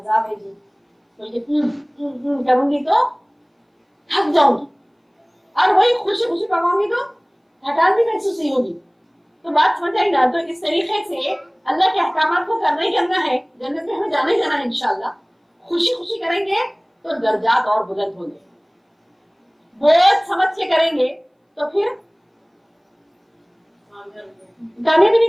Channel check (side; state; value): both; identical; correlation 1.00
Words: है जी, तो करूंगी तो थक जाऊंगी, और वही खुशी खुशी पकाऊंगी तो थकान भी महसूस नहीं होगी। तो बात समझ आई ना। तो इस तरीके से अल्लाह के अहकामात को करना ही करना है, जन्नत में हमें जाना ही जाना है इंशाल्लाह। खुशी खुशी करेंगे तो दर्जात और बुलंद होंगे, बहुत समझ के करेंगे तो फिर कामयाबी नहीं